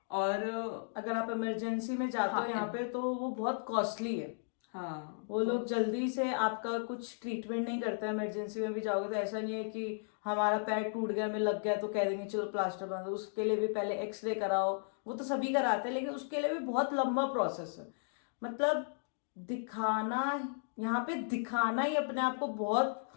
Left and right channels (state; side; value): silent; right; digital silence